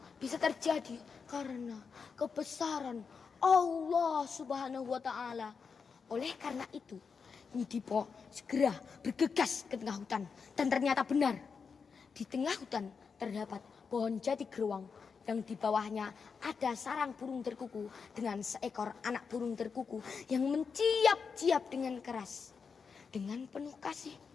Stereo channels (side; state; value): right; quieter; 5.6 dB